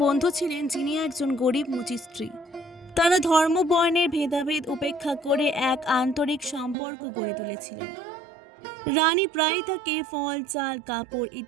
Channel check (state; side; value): drops out; left; at 6.8 s